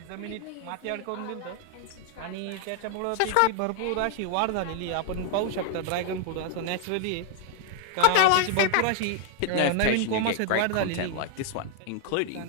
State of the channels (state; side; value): different; both; correlation 0.00